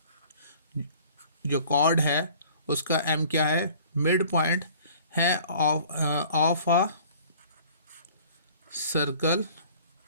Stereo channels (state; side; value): inverted; both; correlation -0.50